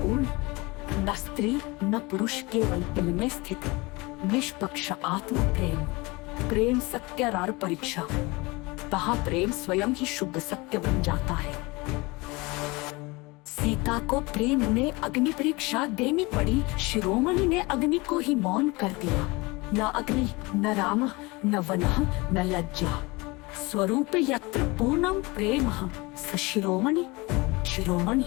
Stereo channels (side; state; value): right; quieter; 24.3 dB